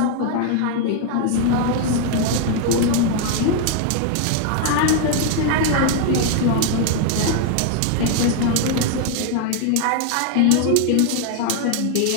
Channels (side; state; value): both; different; correlation 0.00